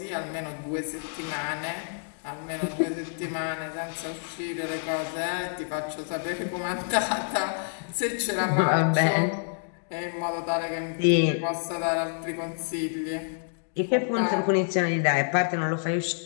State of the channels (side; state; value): right; silent; digital silence